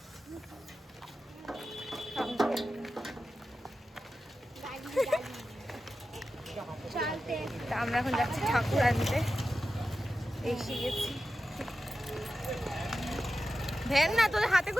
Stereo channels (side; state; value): both; normal; correlation 0.92